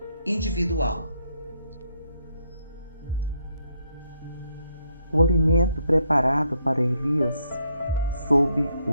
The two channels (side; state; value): both; inverted; correlation -0.75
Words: individual. O alimento preparado para Elias, sob